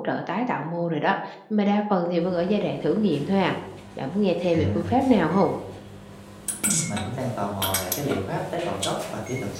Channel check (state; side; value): identical; both; correlation 1.00